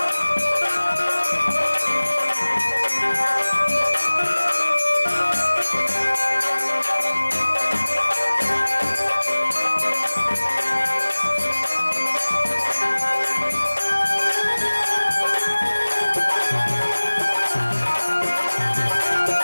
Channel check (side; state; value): both; inverted; correlation -1.00